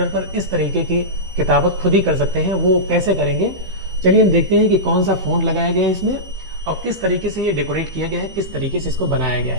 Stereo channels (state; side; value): late; left; 16 ms